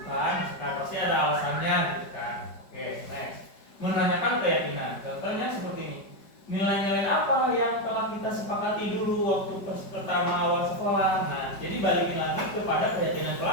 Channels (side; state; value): right; late; 5.0 ms